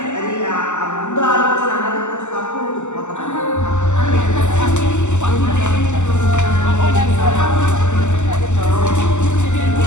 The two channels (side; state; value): right; late; 0.84 ms